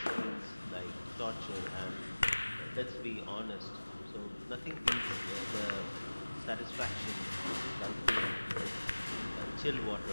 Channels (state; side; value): inverted; both; correlation -1.00